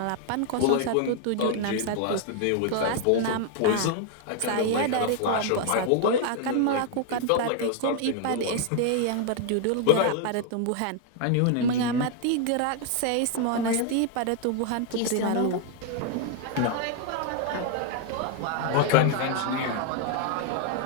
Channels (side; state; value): both; different; correlation 0.00